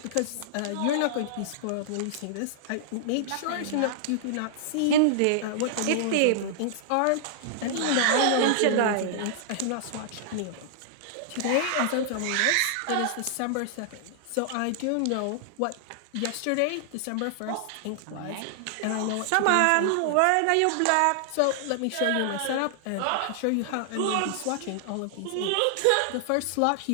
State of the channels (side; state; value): both; different; correlation -0.01